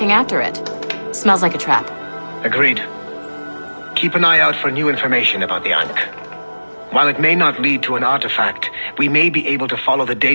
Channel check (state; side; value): inverted; both; correlation -1.00